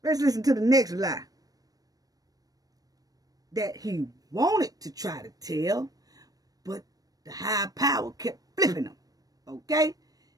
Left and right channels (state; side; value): late; left; 0.18 ms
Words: let's listen to the next lie that he wanted to try to tell, but the high power kept flipping him. Okay?